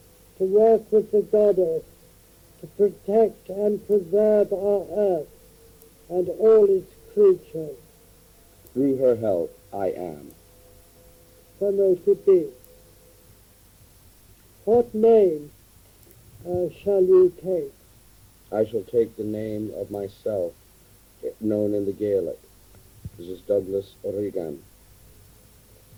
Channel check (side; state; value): both; identical; correlation 1.00